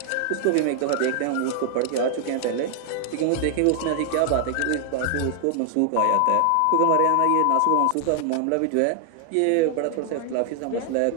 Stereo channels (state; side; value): different; both; correlation 0.00